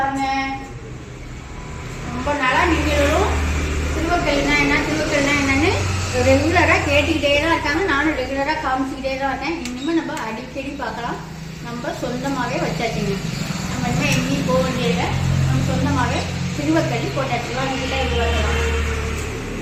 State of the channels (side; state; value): both; identical; correlation 1.00